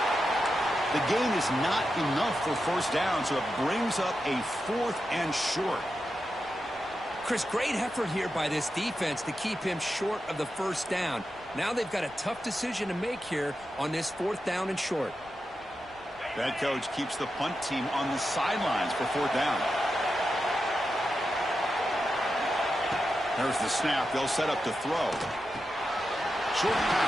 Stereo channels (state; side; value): noise; right; rumble, 26 dB below the sound